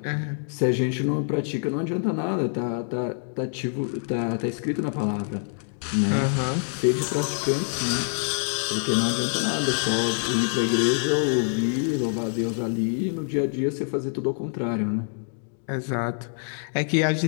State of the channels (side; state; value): right; silent; 61 dB below the other